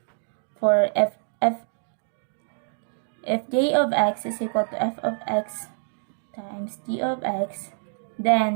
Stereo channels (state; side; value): silent; left; digital silence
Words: for if j of x is equal to f of x times g of x,